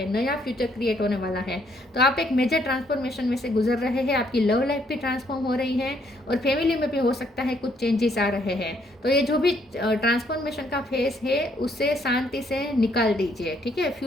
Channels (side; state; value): both; normal; correlation 0.69